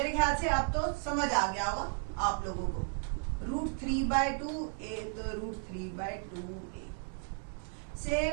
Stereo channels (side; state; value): left; silent; 55 dB below the other